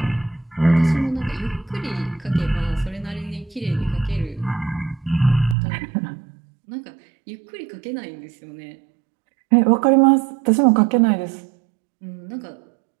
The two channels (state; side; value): drops out; left; at 5.6 s